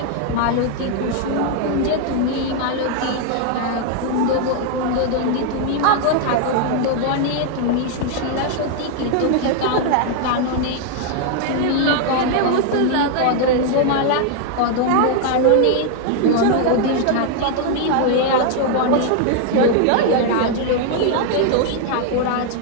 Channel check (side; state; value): both; different; correlation 0.00